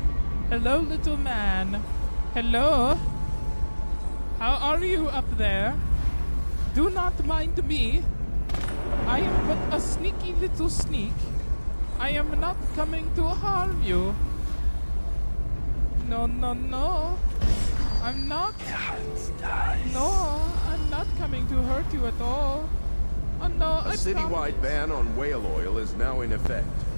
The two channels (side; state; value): both; inverted; correlation -1.00